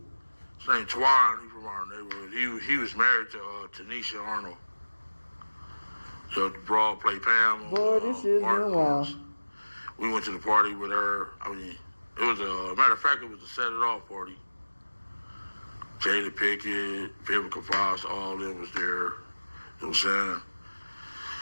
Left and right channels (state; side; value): inverted; both; correlation -1.00